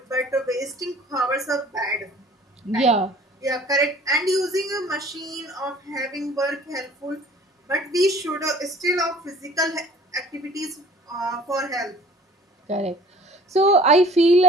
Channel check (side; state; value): both; normal; correlation 0.50